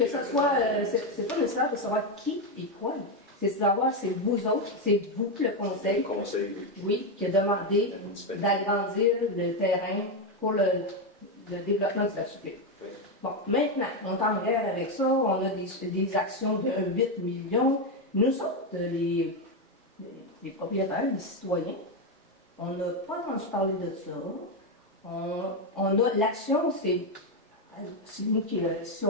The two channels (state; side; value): normal; both; correlation 0.07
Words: ce soit, c'est pas nécessaire de savoir qui et quoi. C'est de savoir, c'est vous autres, c'est vous, le conseil. Le conseil, oui. Oui, qui a demandé d'agrandir le terrain pour le développement de la cité. Oui. Bon, maintenant, on est en guerre avec ça, on a des actions de 8 millions. Nous autres, les propriétaires, les citoyens, on n'a pas entendu parler de ça. On a l'action, c'est nous qui, si